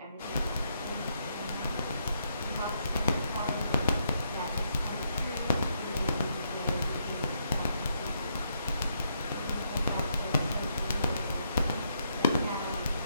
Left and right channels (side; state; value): both; inverted; correlation -0.77